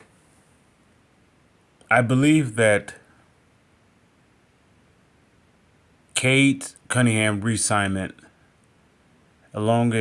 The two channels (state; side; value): identical; both; correlation 1.00